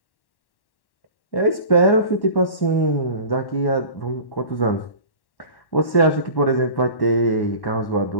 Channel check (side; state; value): right; late; 1.1 ms